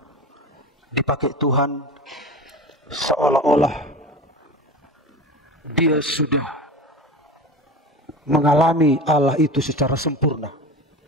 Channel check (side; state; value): both; normal; correlation 0.31